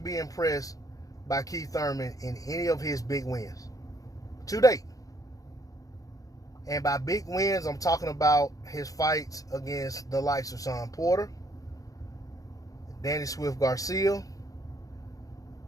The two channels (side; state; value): right; late; 0.17 ms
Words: impressed by Keith Thurman in any of his big wins. To date. And by big wins, I'm talking about his fights against the likes of Sean Porter, Danny Swift Garcia,